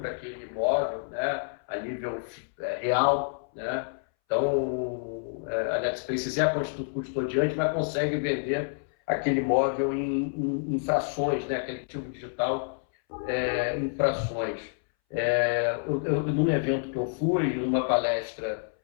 aquele imóvel, né, a nível real, né? Então a NetSpace é a custodiante, mas consegue vender aquele imóvel em frações, né, aquele ativo digital em frações. Num evento que eu fui, numa palestra,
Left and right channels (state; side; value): silent; right; 59 dB below the other